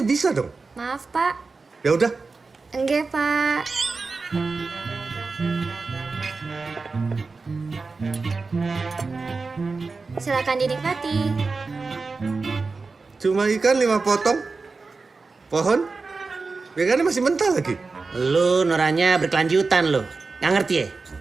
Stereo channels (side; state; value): left; quieter; 4.1 dB